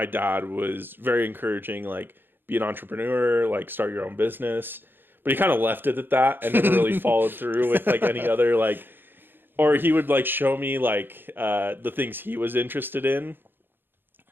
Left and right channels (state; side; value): late; left; 0.099 ms